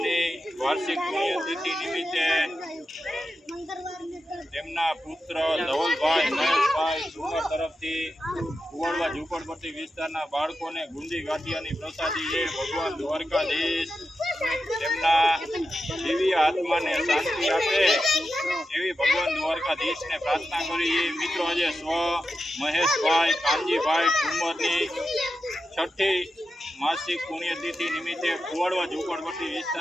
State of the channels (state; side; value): normal; both; correlation 0.89